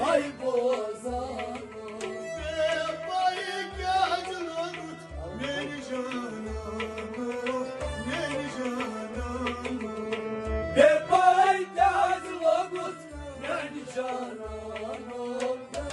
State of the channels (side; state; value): both; identical; correlation 1.00